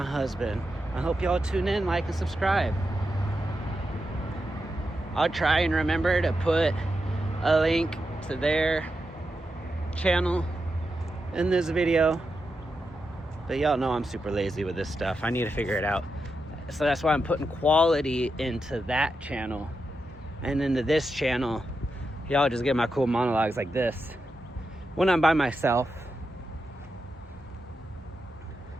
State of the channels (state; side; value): normal; both; correlation 0.87